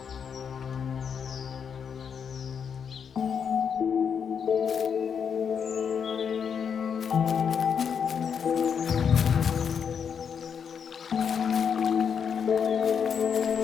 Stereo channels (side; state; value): right; quieter; 7.1 dB